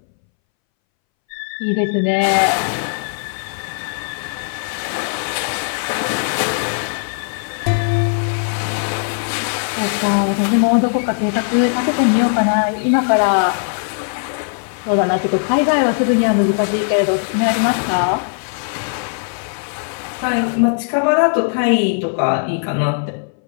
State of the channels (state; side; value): silent; right; 64 dB below the other